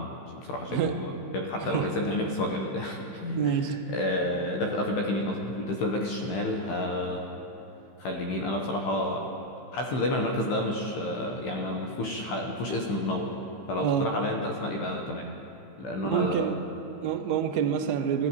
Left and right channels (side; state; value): right; late; 15 ms